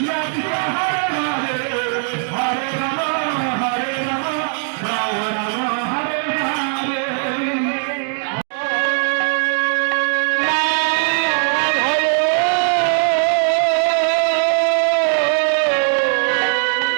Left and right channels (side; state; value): left; silent; 56 dB below the other